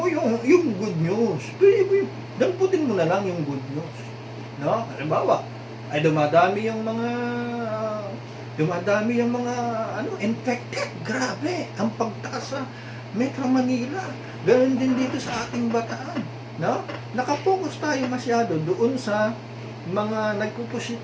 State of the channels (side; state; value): both; identical; correlation 1.00